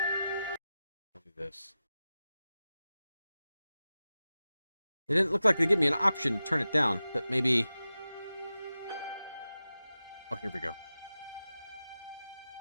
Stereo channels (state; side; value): inverted; both; correlation -0.93